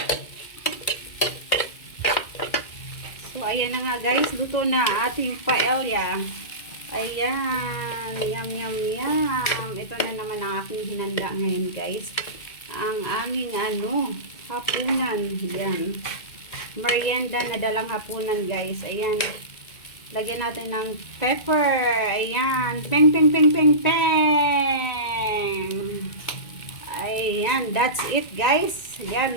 So, ayan na nga guys. Luto na ating paella. Ayan. Yum, yum, yum. Ito na naman ang aking hinanda ngayon guys. Ang aming hapunan. Ayan. Merienda na dalang hapunan guys. Ayan. Lagyan natin ng pepper. Ayan. Peng, peng, peng, peng, peng. Ayan, that's it guys.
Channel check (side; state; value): right; late; 2.1 ms